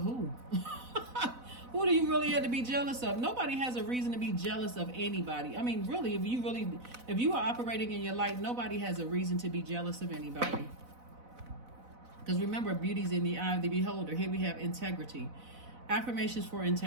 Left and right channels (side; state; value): left; late; 4.0 ms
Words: who? Who do you really have to be jealous of? Nobody has a reason to be jealous of anybody. I mean, really, if you are operating in your light, nobody has a reason to be jealous of anybody. Because remember, beauty's in the eye of the beholder. Here we have integrity. Affirmations for